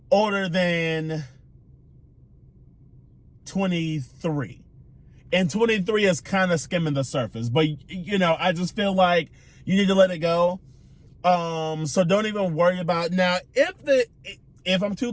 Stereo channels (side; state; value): both; identical; correlation 1.00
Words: older than 23. And 23 is kind of skimming the surface. But, I just feel like you need to let it go. So don't even worry about it. Now, if I'm too